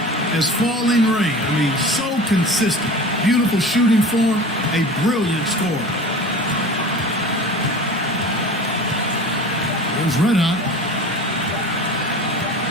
as falling rain. I mean, so consistent. Beautiful shooting form, a brilliant scorer. There's Red Hot.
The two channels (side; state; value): both; normal; correlation 0.37